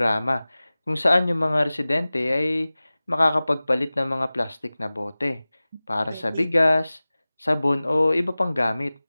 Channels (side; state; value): both; inverted; correlation -0.98